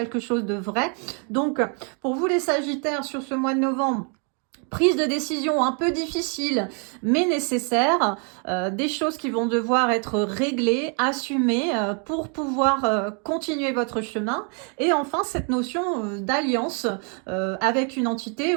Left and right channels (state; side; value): quieter; left; 38.9 dB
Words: chose de vrai. Donc, pour vous les Sagittaires, sur ce mois de novembre, prise de décision un peu difficile, mais nécessaire, des choses qui vont devoir être réglées, assumées pour pouvoir continuer votre chemin. Et enfin, cette notion d'alliance avec une entité